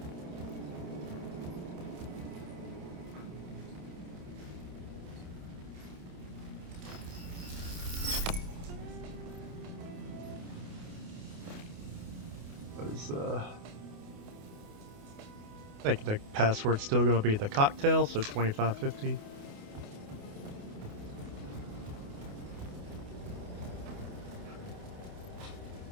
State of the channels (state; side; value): late; left; 28 ms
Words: I think the password's still going to be the cocktail, so 2550.